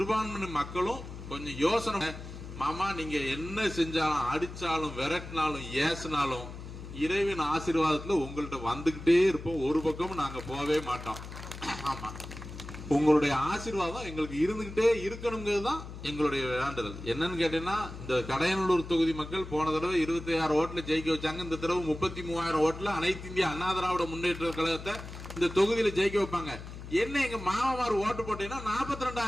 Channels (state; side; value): noise; left; hum, 11 dB below the sound